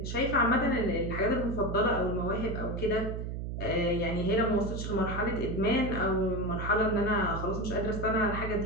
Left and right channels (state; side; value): noise; right; hum, 5 dB below the sound